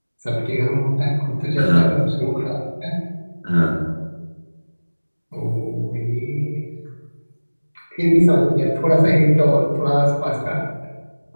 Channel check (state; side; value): inverted; both; correlation -1.00